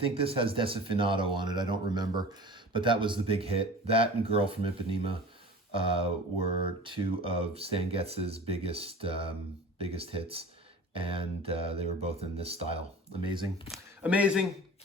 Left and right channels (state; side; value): normal; both; correlation 0.39